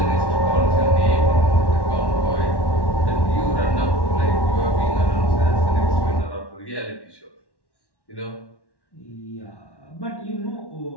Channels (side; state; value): right; late; 1.1 ms